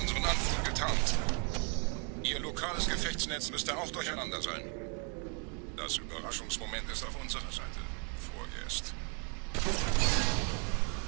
Anflug getarnt. Ihr lokales Gefechtsnetz müsste auch durcheinander sein. Das Überraschungsmoment ist auf unserer Seite. Vorerst.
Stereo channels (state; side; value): quieter; left; 37.7 dB